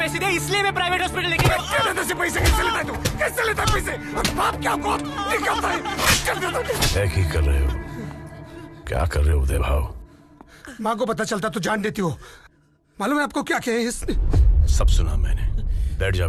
दिए इसलिए मैं प्राइवेट हॉस्पिटल लेके गया। पिटिया दादा से पैसे कैसे लेता है तू? कैसे लेता है पैसे? और बाप क्या को निकलता है? क्या की कर रहे हो? क्या कर रहे हो उदय भाव? माँ को पता चलता तो जान देती हो। मालूम है आपको क्या कहे इसने? सब सुना मैंने। बैठ जा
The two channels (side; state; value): both; identical; correlation 1.00